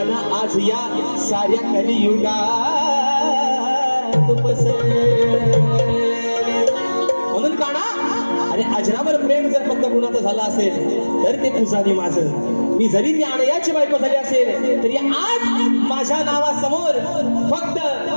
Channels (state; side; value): inverted; both; correlation -1.00